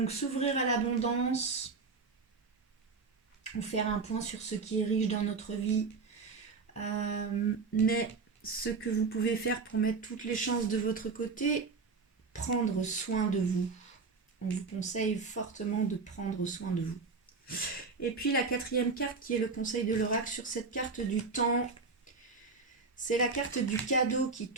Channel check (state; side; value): quieter; left; 4.5 dB